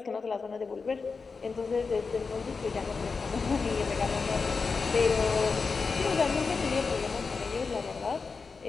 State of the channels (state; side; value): quieter; right; 4.8 dB